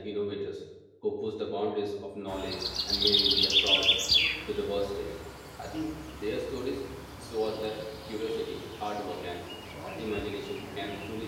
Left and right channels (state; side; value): identical; both; correlation 1.00